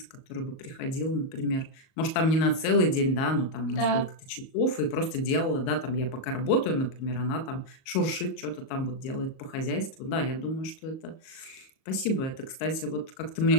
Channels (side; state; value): right; late; 38 ms